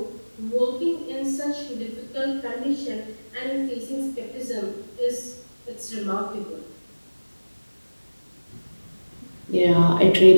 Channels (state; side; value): inverted; both; correlation -1.00